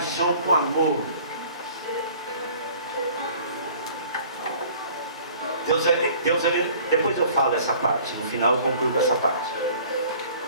com o amor. Deus, depois eu falo essa parte, no final eu concluo com essa parte,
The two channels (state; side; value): inverted; both; correlation -0.50